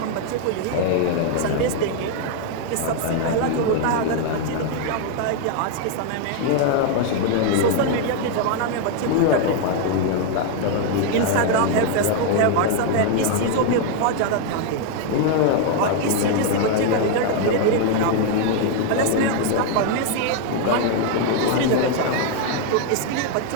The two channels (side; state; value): both; different; correlation 0.01